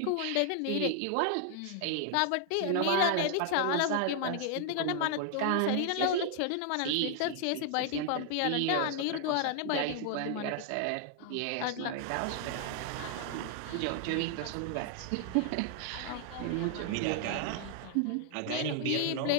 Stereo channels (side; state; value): both; different; correlation 0.00